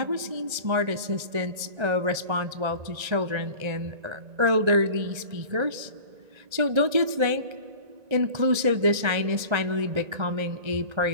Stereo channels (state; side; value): late; left; 1.9 ms